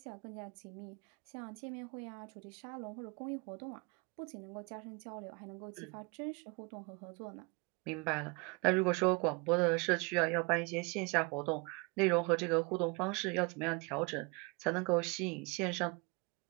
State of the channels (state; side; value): quieter; left; 29.3 dB